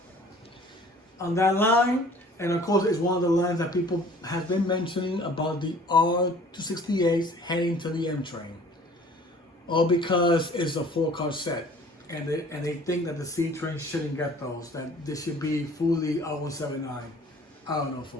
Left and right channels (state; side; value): normal; both; correlation 0.51